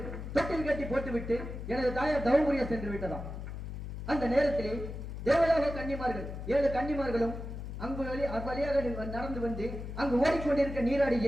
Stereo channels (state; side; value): noise; left; hum, 8 dB below the sound